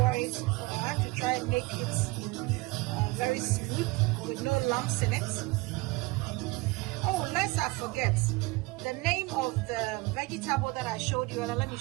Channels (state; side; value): quieter; left; 23.5 dB